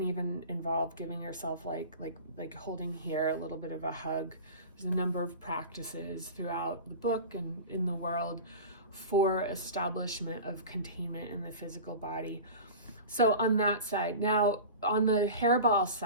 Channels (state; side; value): inverted; both; correlation -0.34